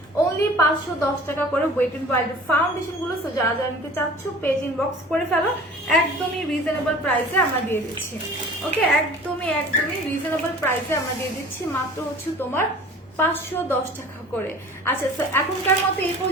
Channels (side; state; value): both; normal; correlation 0.44